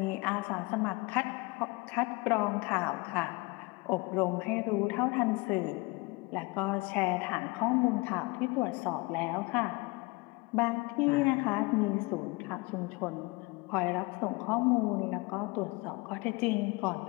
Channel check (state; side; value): quieter; right; 25.5 dB